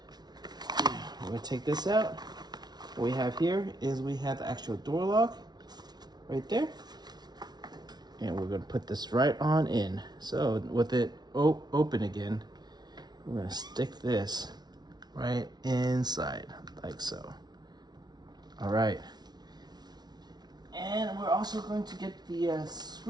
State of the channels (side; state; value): left; late; 0.19 ms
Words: we're going to take this out. What we have here is we have the actual door lock right there, and we're going to put this right on in. So with it open again, we're going to stick this right inside, like so. All right. And we're also going to get the